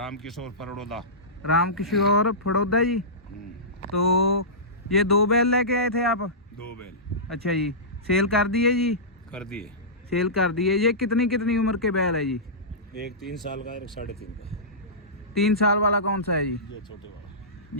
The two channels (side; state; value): both; normal; correlation -0.19